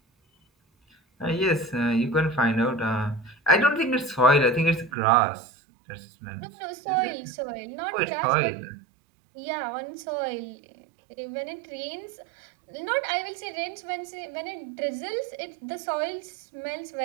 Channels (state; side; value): drops out; left; at 4.9 s